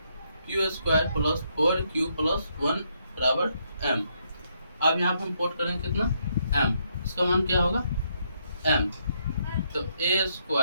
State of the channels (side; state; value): both; inverted; correlation -0.75